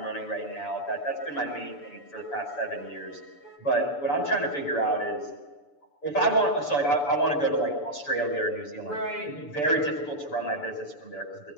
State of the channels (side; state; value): right; late; 6.9 ms